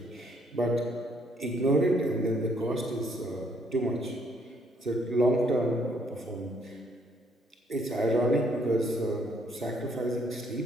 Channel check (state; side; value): normal; both; correlation 0.68